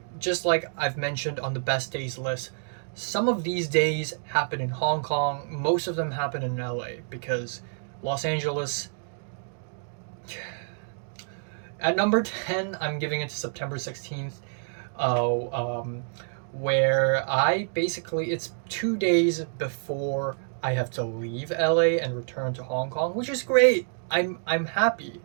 just like I've mentioned on the best days list, some of these days happen in Hong Kong, most of them happen in LA because Los Angeles. At number 10, I'm giving it to September 16th, uh, um, where it's 2 days before I have to leave LA and return to Hong Kong, which is great. I'm happy.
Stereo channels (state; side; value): silent; left; digital silence